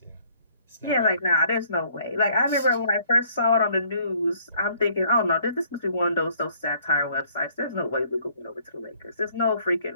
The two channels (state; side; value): inverted; both; correlation -0.62